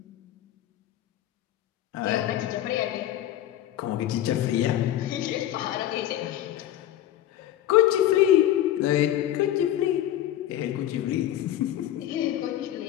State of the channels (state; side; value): quieter; right; 12.5 dB